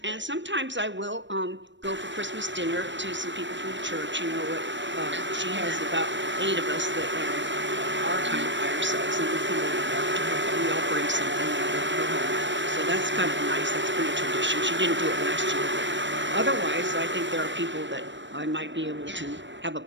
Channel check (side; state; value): left; late; 0.53 ms